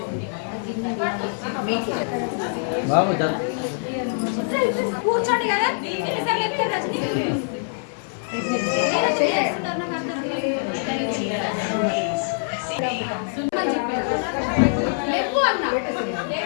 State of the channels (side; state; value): right; silent; 63 dB below the other